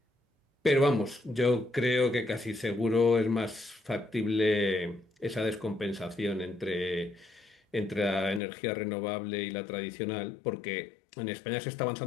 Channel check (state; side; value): drops out; right; at 8.4 s